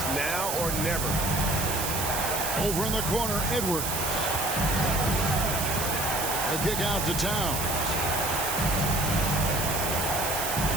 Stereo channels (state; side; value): noise; right; hiss, 2 dB below the sound